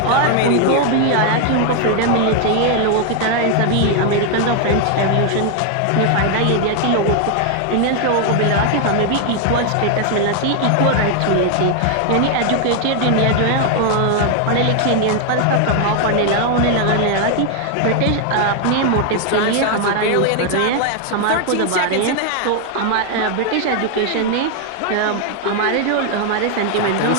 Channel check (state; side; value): different; both; correlation 0.01